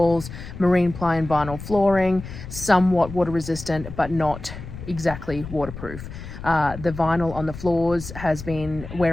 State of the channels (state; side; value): noise; left; rumble, 11 dB below the sound